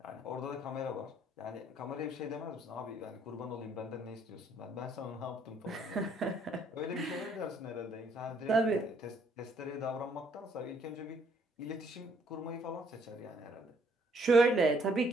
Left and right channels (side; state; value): both; normal; correlation 0.66